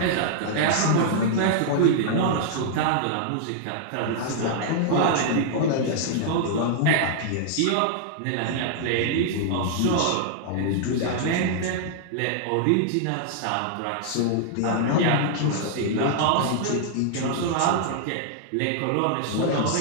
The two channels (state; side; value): different; both; correlation -0.01